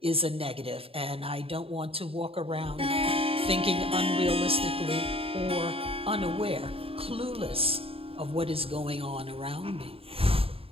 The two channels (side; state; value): left; late; 0.27 ms